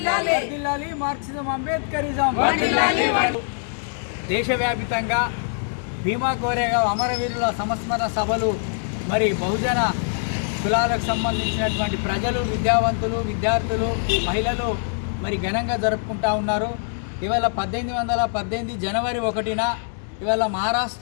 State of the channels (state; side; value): silent; right; digital silence